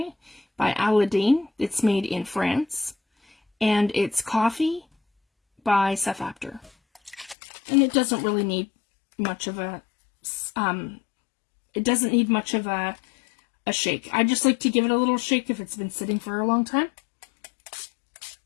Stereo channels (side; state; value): right; drops out; at 7.4 s